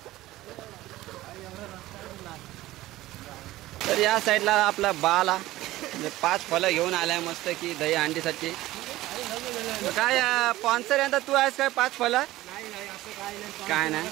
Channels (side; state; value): left; quieter; 16.7 dB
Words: तर या साईडला आपला बाला म्हणजे 5 फळं घेऊन आलाय मस्त की दही हांडीसाठी। काय स्पॉन्सर यंदा तू आहेस काय 5 फळं? काय नाही।